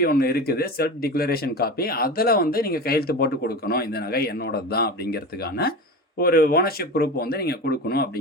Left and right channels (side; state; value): both; normal; correlation 0.28